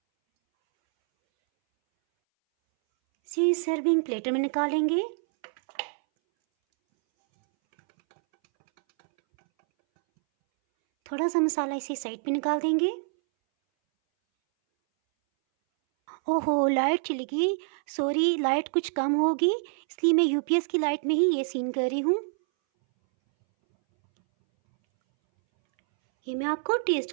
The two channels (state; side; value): silent; left; 60 dB below the other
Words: इसे सर्विंग प्लेटर में निकालेंगे। थोड़ा सा मसाला इसे साइड पे निकाल देंगे। ओहो, लाइट चली गई, सॉरी, लाइट कुछ कम होगी, इसलिए मैं यूपीएस की लाइट में ही ये सीन कर रही हूँ। ये मैं आपको